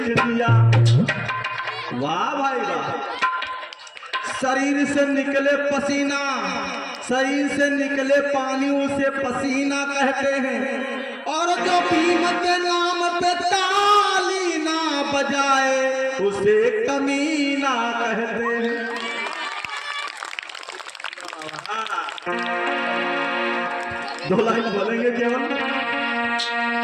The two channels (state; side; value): identical; both; correlation 1.00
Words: दिया। वाह भाई वाह। शरीर से निकले पसीना, शरीर से निकले पानी उसे पसीना कहते हैं। और जो भीम के नाम पे ताली ना बजाए उसे कमीना कहते हैं। दो लाइन बोलेंगे केवल।